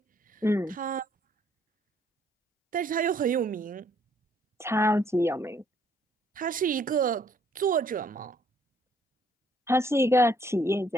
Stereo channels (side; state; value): both; normal; correlation 0.65